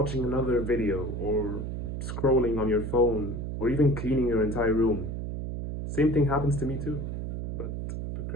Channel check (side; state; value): right; noise; hum, 4 dB below the sound